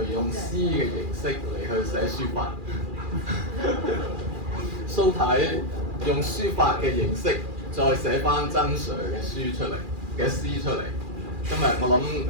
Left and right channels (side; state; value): left; late; 2.4 ms